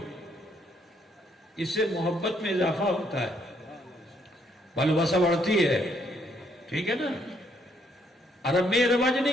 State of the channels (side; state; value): both; normal; correlation 0.71